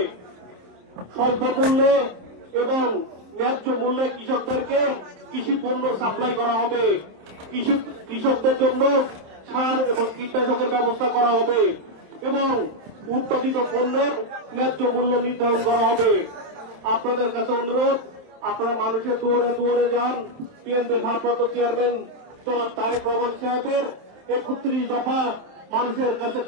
স্বল্প মূল্যে এবং ন্যায্য মূল্যে কৃষকদেরকে কৃষি পণ্য সাপ্লাই করা হবে, কৃষকদের জন্য সার এবং কীটনাশকের ব্যবস্থা করা হবে এবং উৎপাদিত পণ্যের ন্যায্য মূল্য নির্ধারণ করা হবে। আপনাদের কাছে অনুরোধ, আপনারা মানুষের দুয়ারে দুয়ারে যান, বিএনপির ভারপ্রাপ্ত চেয়ারম্যান জনাব তারেক রহমান সাহেবের 31 দফা মানুষের কাছে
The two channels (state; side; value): late; left; 27 ms